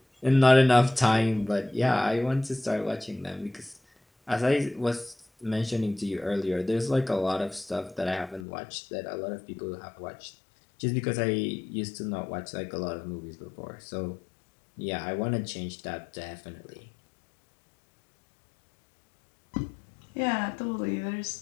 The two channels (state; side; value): drops out; right; at 8.5 s